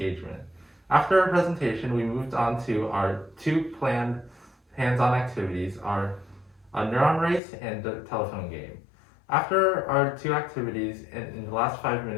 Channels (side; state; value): right; drops out; at 7.4 s